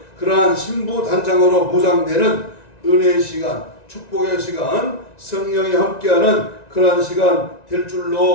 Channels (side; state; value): right; late; 1.9 ms